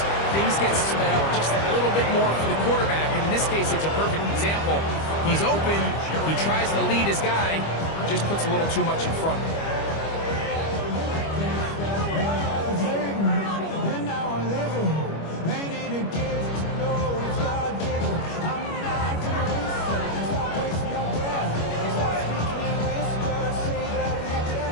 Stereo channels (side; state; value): right; late; 25 ms